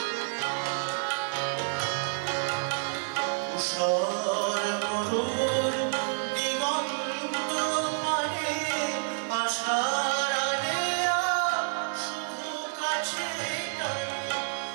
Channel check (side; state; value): left; silent; 59 dB below the other